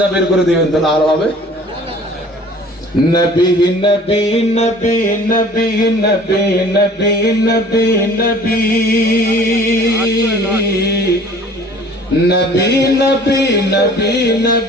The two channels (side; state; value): both; normal; correlation 0.49